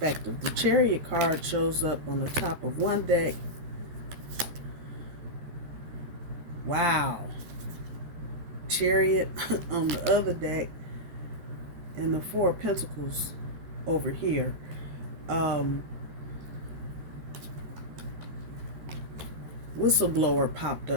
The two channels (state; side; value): late; left; 13 ms